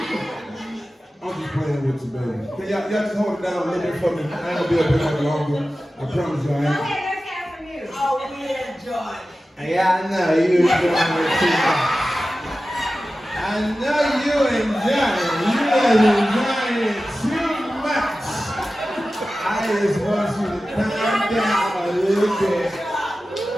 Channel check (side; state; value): both; normal; correlation 0.94